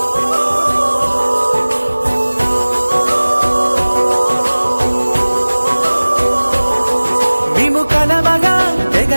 మేము కలవగా తెగ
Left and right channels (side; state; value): both; inverted; correlation -1.00